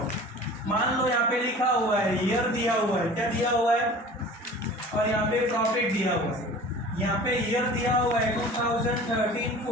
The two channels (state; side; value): normal; both; correlation 0.42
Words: मान लो यहाँ पे लिखा हुआ है ईयर दिया हुआ है, क्या दिया हुआ है, और यहाँ पे प्रॉफिट दिया हुआ है। यहाँ पे ईयर दिया हुआ है